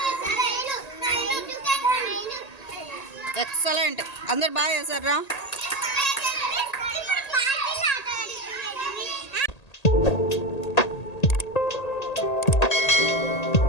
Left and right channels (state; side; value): late; right; 1.8 ms